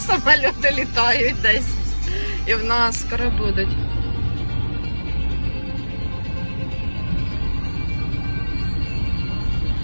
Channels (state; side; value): inverted; both; correlation -1.00